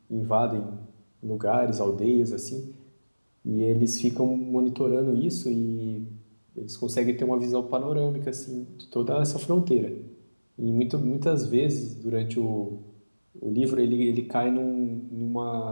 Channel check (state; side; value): inverted; both; correlation -1.00